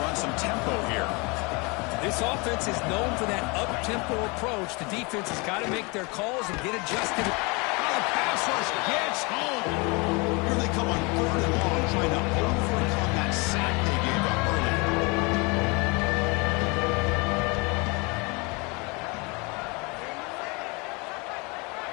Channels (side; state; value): right; quieter; 28.7 dB